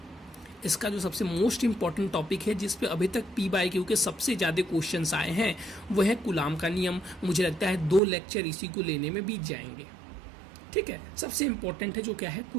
इसका, जो सबसे मोस्ट इम्पॉर्टेंट टॉपिक है, जिस पे अभी तक P/Q के सबसे ज़्यादा क्वेश्चंस आए हैं, वो है कूलाम का नियम। मुझे लगता है 2 लेक्चर इसी को लेने में बीत जाएंगे, ठीक है। सबसे इंपॉर्टेंट है जो क्या है?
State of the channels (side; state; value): left; drops out; at 8.0 s